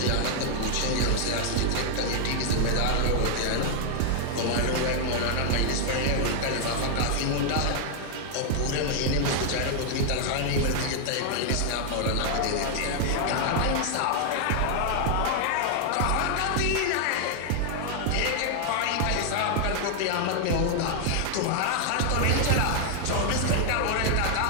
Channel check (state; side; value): different; both; correlation 0.00